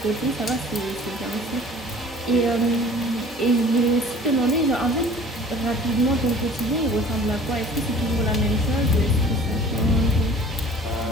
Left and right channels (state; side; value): normal; both; correlation 0.48